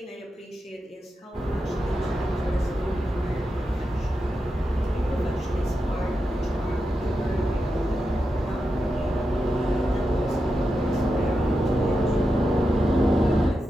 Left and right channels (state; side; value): normal; both; correlation 0.89